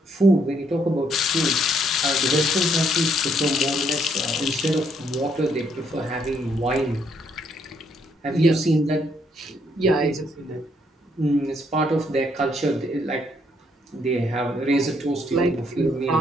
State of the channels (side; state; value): both; normal; correlation 0.71